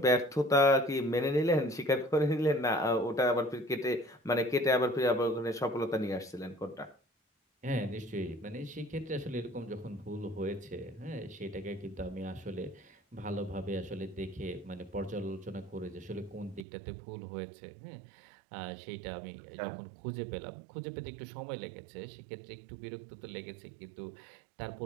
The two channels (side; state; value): left; drops out; at 16.7 s